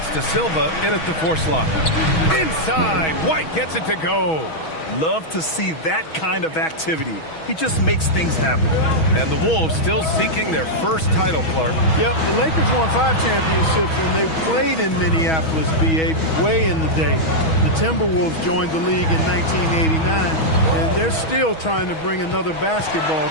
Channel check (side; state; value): right; late; 6.2 ms